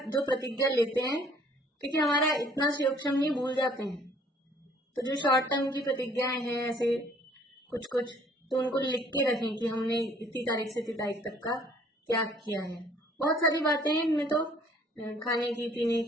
जो प्रतिज्ञा लेते हैं, क्योंकि हमारा इतना सूक्ष्म नहीं, भूल जाते हैं, तो जो शॉर्ट टर्म की प्रतिज्ञाएं हैं ऐसे कुछ कुछ, तो उनको लिख के रखें कि हमने इतनी तारीख से इतनी तारीख तक का त्याग किया है। बहुत सारी बातें हैं इनमें, तो खाने की, पीने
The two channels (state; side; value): normal; both; correlation 0.58